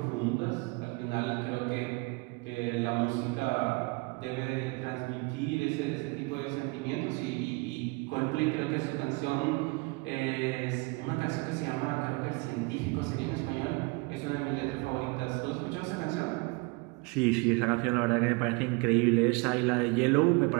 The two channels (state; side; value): quieter; left; 27.4 dB